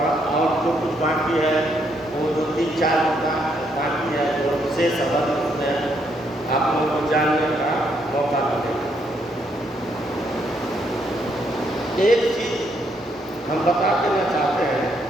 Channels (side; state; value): both; normal; correlation 0.74